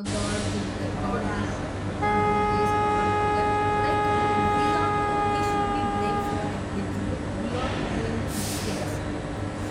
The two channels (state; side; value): identical; both; correlation 1.00